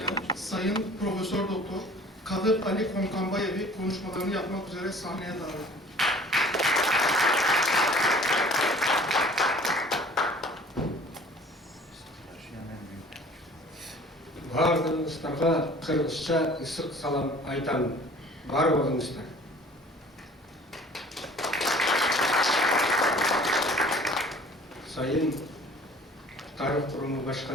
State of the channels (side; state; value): both; normal; correlation 0.49